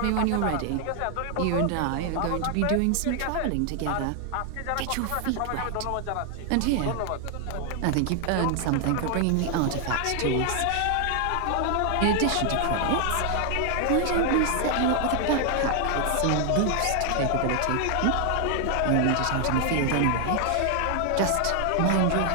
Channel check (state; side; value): different; both; correlation 0.00